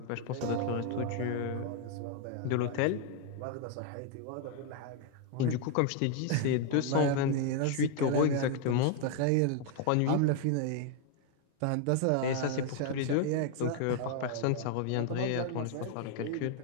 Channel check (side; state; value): both; different; correlation 0.00